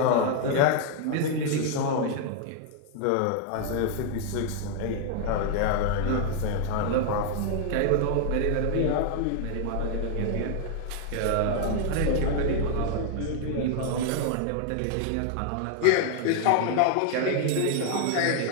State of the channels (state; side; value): different; both; correlation 0.00